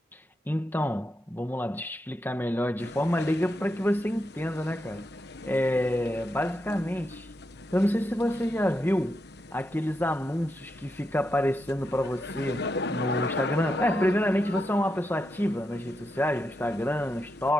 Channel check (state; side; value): normal; both; correlation 0.84